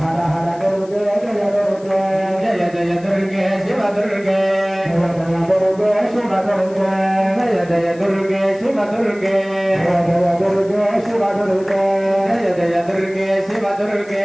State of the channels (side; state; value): left; noise; hiss, 26 dB below the sound